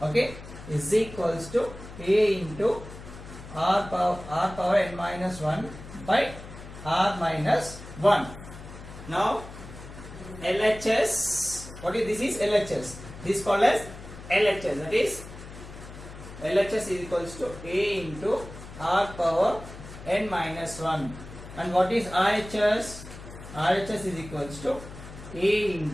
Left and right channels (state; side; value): noise; left; hum, 14 dB below the sound